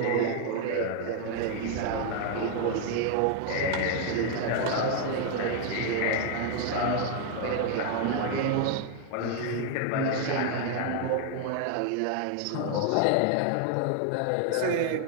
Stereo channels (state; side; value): different; both; correlation 0.00